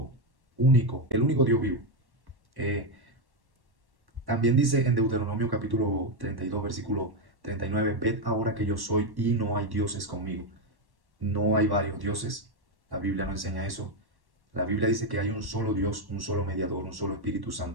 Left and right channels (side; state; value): left; late; 1.1 ms